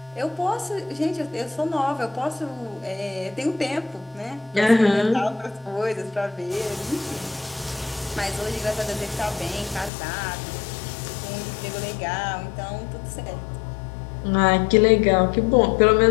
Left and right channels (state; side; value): drops out; right; at 9.9 s